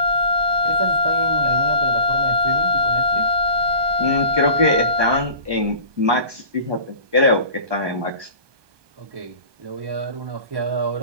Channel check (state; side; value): late; left; 1.2 ms